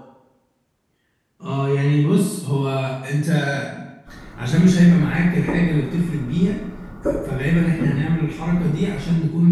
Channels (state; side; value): identical; both; correlation 1.00